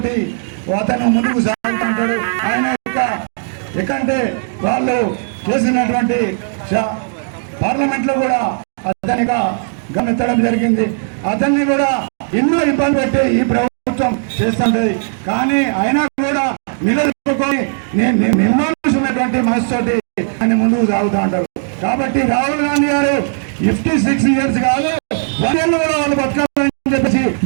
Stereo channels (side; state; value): left; silent; digital silence